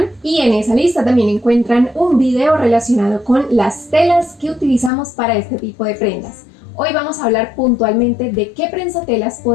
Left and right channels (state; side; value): drops out; right; at 4.9 s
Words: y en esa lista también encuentran un video relacionado con las telas que utilizamos para este tipo de prendas. Hoy vamos a hablar puntualmente de qué prensatelas